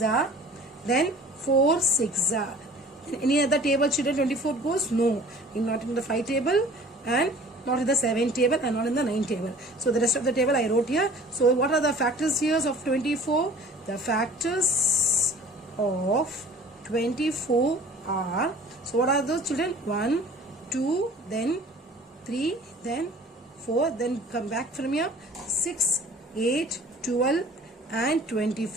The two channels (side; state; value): both; normal; correlation 0.47